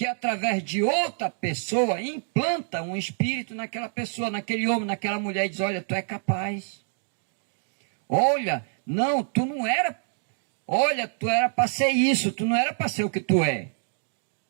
através de outra pessoa implanta um espírito naquela pessoa, naquele homem, naquela mulher e diz: olha, tu é capaz. Olha, não, tu não era. Olha, tu era para ser isso, tu não era para ser o que tu é.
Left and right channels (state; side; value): silent; left; 61 dB below the other